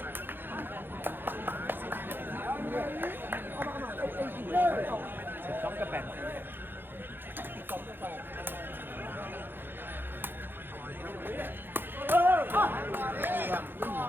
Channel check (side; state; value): left; late; 0.099 ms